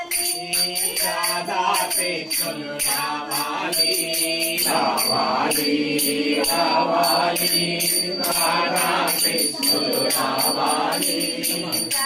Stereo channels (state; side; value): identical; both; correlation 1.00